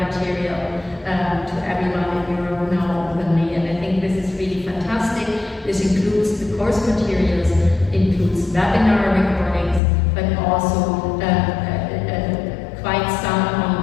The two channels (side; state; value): right; drops out; at 9.8 s